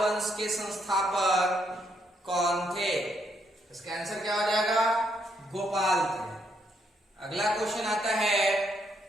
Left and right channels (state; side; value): normal; both; correlation 0.75